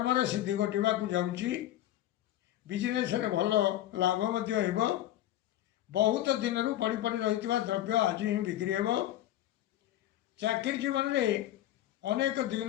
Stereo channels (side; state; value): right; quieter; 13.4 dB